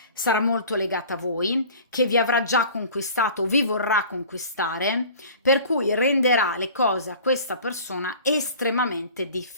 sarà molto legata a voi, che vi avrà già conquistato, vi vorrà conquistare, per cui renderà le cose a questa persona estremamente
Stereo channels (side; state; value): both; inverted; correlation -0.44